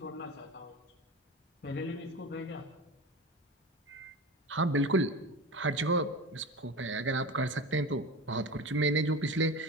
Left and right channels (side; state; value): both; normal; correlation 0.28